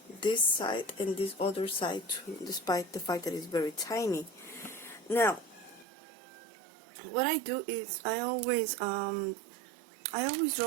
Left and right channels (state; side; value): drops out; left; at 5.9 s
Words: this side and this other side too, despite the fact that it's very tiny. Now what I do is I always draw